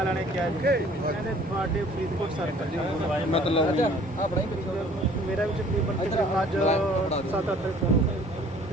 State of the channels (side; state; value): both; normal; correlation 0.53